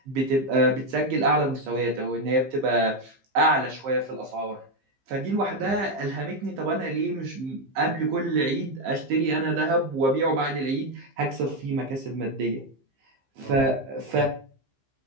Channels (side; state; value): left; late; 15 ms